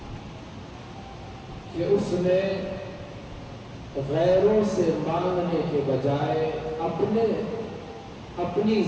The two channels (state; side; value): identical; both; correlation 1.00